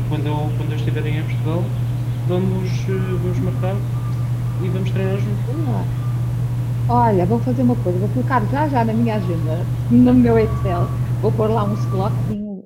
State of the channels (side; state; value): both; identical; correlation 1.00